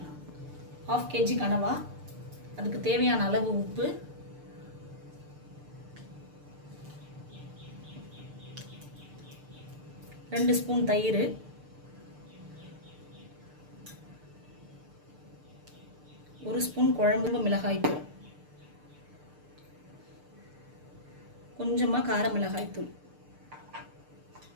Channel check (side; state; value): left; late; 6.7 ms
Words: 1/2 kg கனவா, அதுக்கு தேவையான அளவு உப்பு, ரெண்டு ஸ்பூன் தயிர், ஒரு ஸ்பூன் குழம்பு மிளகாய் தூள், கொஞ்சமாக கார மிளகாய் தூள்,